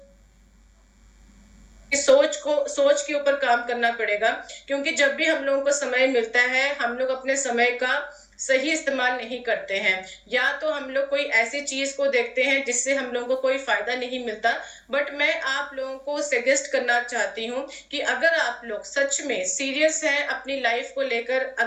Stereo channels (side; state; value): both; identical; correlation 1.00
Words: सोच के ऊपर काम करना पड़ेगा, क्योंकि जब भी हम लोगों को समय मिलता है, हम लोग अपने समय का सही इस्तेमाल नहीं करते हैं। या तो हम लोग कोई ऐसी चीज को देखते हैं जिससे हम लोगों को कोई फायदा नहीं मिलता। बट मैं आप लोगों को सजेस्ट करना चाहती हूँ कि अगर आप लोग सच में सीरियस हैं अपनी लाइफ को लेकर,